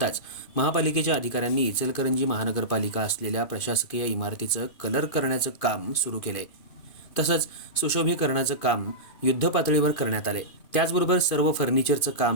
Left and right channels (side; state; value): right; late; 2.5 ms